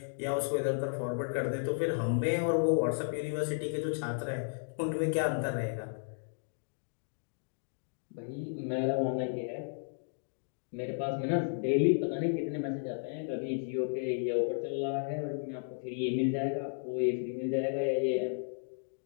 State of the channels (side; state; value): right; silent; digital silence